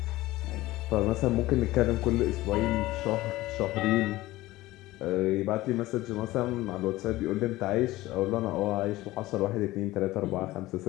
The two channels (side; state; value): right; quieter; 17.8 dB